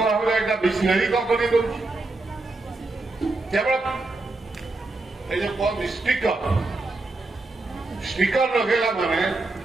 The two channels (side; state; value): left; quieter; 3.1 dB